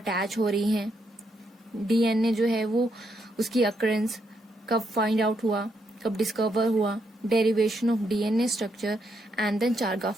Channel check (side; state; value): both; normal; correlation 0.78